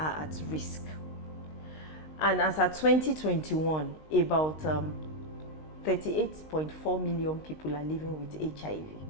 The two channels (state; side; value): late; right; 19 ms